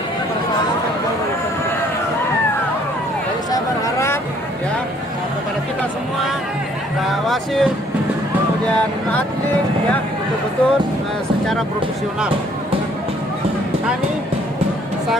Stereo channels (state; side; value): normal; both; correlation 0.62